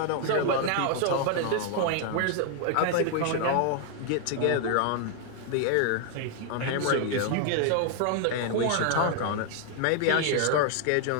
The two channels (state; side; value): different; both; correlation 0.00